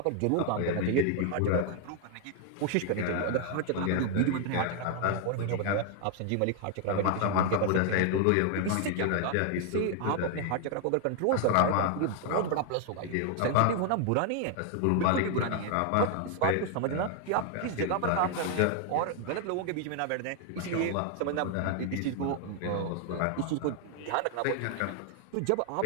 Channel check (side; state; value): both; different; correlation 0.00